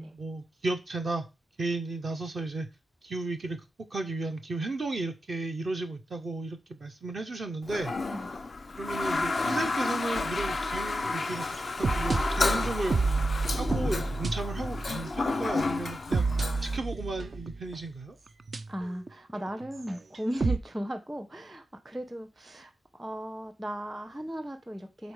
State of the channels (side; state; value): both; normal; correlation 0.89